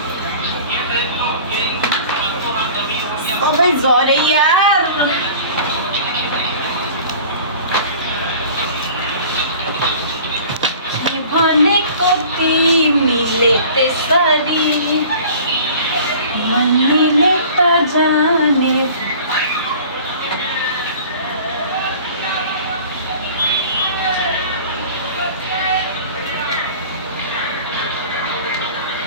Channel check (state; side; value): inverted; both; correlation -0.44